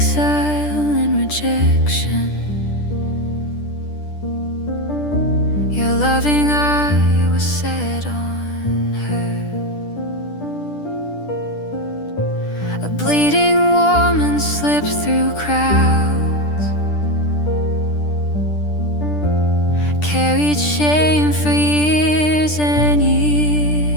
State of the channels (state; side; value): late; right; 10 ms